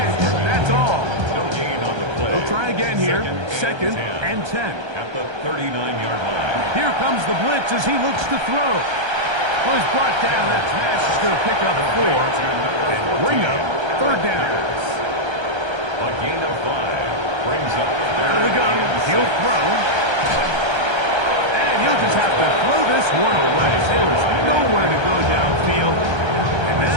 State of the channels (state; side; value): late; left; 1.3 ms